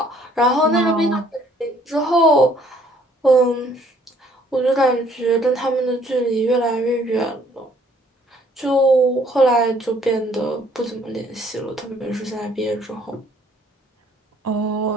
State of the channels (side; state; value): both; normal; correlation 0.62